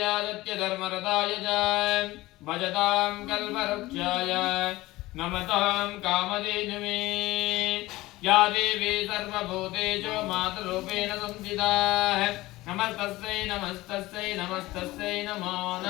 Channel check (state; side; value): quieter; right; 18.8 dB